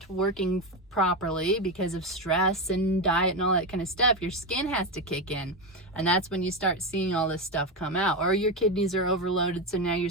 working properly because of stress and diet and all that kind of stuff, your skin has to kick in. And that's when you start seeing all this stuff come out. Or your kidneys are overloaded, so now your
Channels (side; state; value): both; normal; correlation 0.13